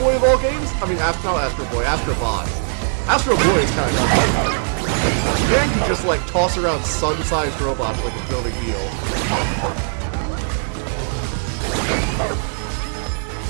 of all games? I mean, not Astro Boy, Astrobot. Astro Boy is kind of nuts. Man could just like toss around sun-sized robots like it's no big deal.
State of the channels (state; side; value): silent; left; digital silence